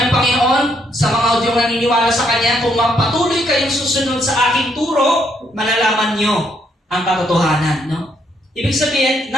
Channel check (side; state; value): both; normal; correlation 0.73